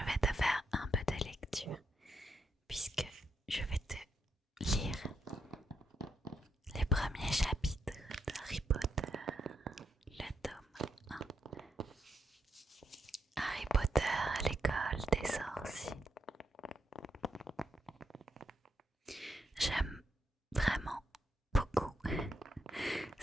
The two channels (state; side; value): normal; both; correlation 0.81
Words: vais te faire un peu de lecture puisque je vais te lire les premiers chapitres d'Harry Potter, le tome 1. Harry Potter à l'école des sorciers. J'aime vraiment beaucoup